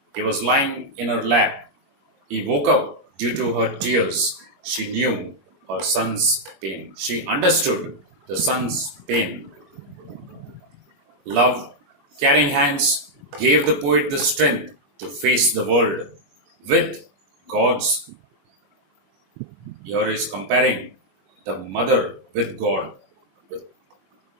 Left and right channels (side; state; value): left; late; 21 ms